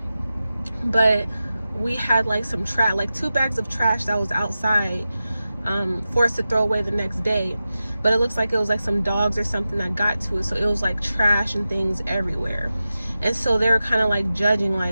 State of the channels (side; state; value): both; inverted; correlation -0.93